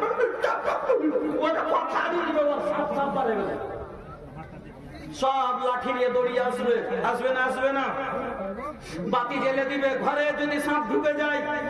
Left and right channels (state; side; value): identical; both; correlation 1.00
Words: সব লাঠি নিয়ে দৌড়িয়ে আসবে না? বাতি জেলে দিবে। ঘরে যদি সাপ ঢুকে যায়,